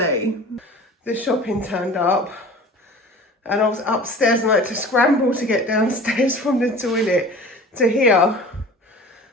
the shopping turned up. And I was upstairs and I had to scramble to get downstairs from the toilet to here.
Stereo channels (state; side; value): normal; both; correlation 0.41